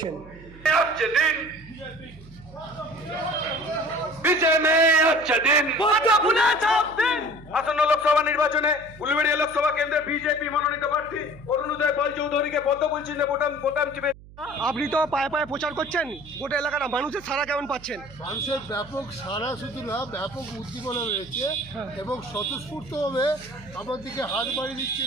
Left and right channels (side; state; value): right; noise; hum, 20 dB below the sound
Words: আসন্ন লোকসভা নির্বাচনে উলুবেড়িয়া লোকসভা কেন্দ্রে বিজেপি মনোনীত প্রার্থী অরুণ উদয় পাল চৌধুরীকে পদ্মফুল চিহ্নে ভোটাম চিপে। আপনি তো পায়ে পায়ে প্রচার করছেন, গোটা এলাকার মানুষের সাড়া কেমন পাচ্ছেন? মানুষের ব্যাপক সাড়া, শুধু না ব্যাপক উদ্দীপনা রয়েছে এবং স্বতঃস্ফূর্তভাবে আমার দিকে হাত বাড়িয়ে দিচ্ছে,